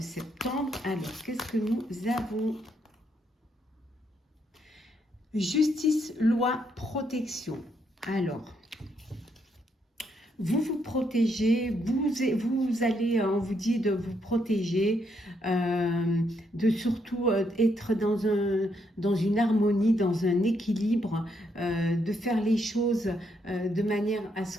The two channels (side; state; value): both; normal; correlation 0.75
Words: Alors, qu'est-ce que nous avons? Justice, loi, protection. Alors, vous vous protégez, vous allez, on vous dit de vous protéger, de surtout être dans une harmonie, dans un équilibre, de faire les choses de manière à ce